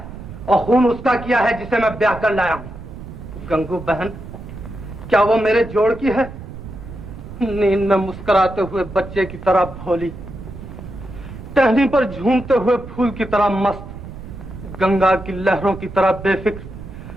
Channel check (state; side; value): noise; right; rumble, 13 dB below the sound